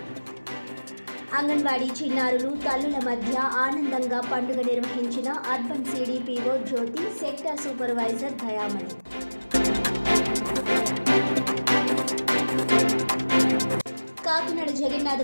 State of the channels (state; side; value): inverted; both; correlation -1.00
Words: అంగన్వాడీ చిన్నారులు తల్లుల మధ్య ఆనందంగా పండుగ నిర్వహించిన అర్బన్ సిడిపిఓ జ్యోతి, సెక్టర్ సూపర్వైజర్ దయామణి. కాకినాడ